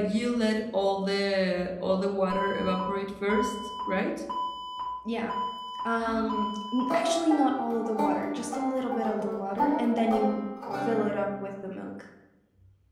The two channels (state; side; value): identical; both; correlation 1.00